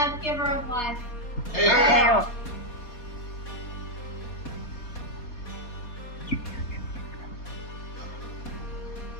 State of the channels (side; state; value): right; late; 4.2 ms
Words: giver of life! Hail!